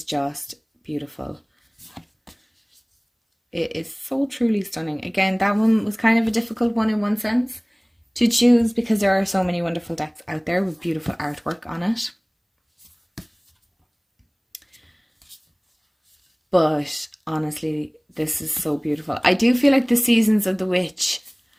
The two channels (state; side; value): identical; both; correlation 1.00